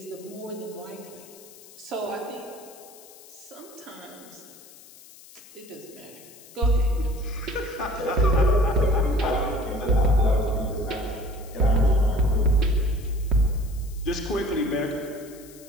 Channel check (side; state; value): left; noise; hiss, 21 dB below the sound